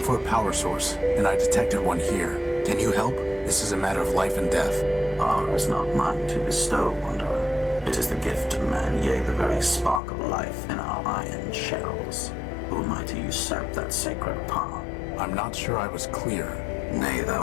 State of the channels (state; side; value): drops out; right; at 10.0 s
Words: a power source, and I detected one here. Can you help? This is a matter of life and death. Power is not mine to bestow, wanderer. It is the gift of man, yea, the very spark of life in our iron shells. Who am I to usurp that sacred power? I'm not sure I was clear. Nay,